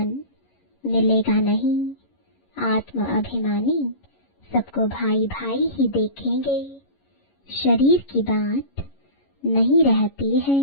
मिलेगा नहीं। आत्म अभिमानी सबको भाई भाई ही देखेंगे। शरीर की बात नहीं रहती है।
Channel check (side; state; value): right; late; 11 ms